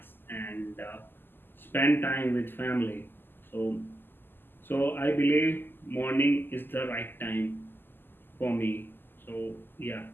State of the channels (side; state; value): right; late; 0.095 ms